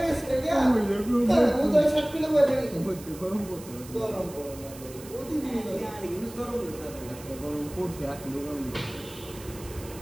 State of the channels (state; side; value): noise; right; hiss, 17 dB below the sound